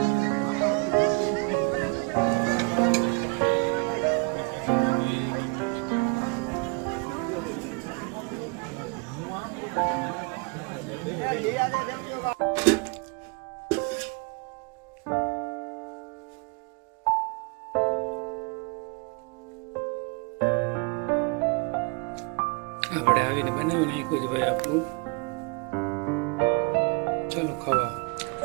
આપણે આવીને બનાવી નાખ્યું છે ભાઈ આપણું. ચાલો ખાવા.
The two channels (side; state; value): left; quieter; 31.5 dB